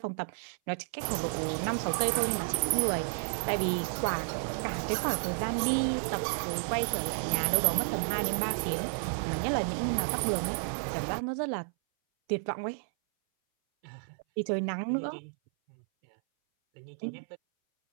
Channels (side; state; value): left; silent; 57 dB below the other